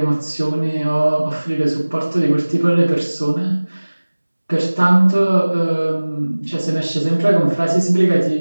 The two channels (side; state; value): both; inverted; correlation -1.00